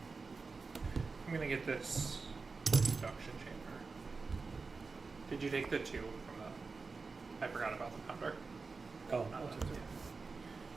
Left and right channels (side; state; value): left; quieter; 4.3 dB